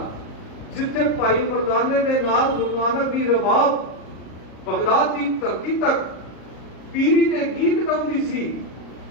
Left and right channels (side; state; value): right; late; 38 ms